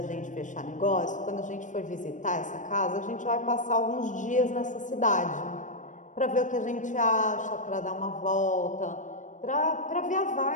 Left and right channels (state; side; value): late; right; 0.37 ms